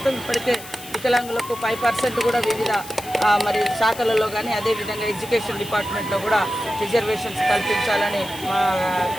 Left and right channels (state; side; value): noise; left; hiss, 15 dB below the sound